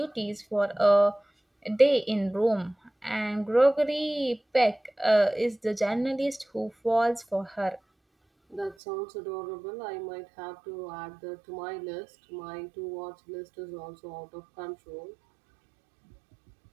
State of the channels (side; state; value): left; drops out; at 8.8 s